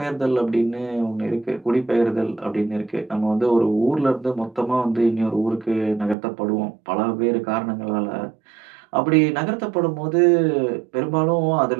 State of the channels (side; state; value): left; drops out; at 6.2 s